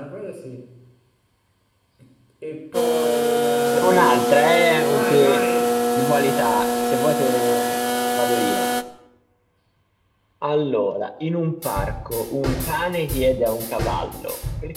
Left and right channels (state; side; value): identical; both; correlation 1.00